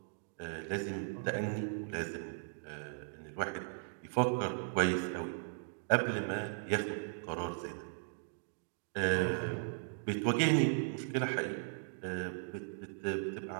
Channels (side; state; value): left; silent; digital silence